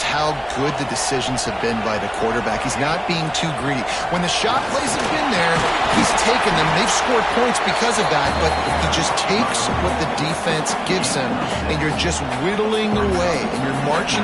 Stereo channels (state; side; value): identical; both; correlation 1.00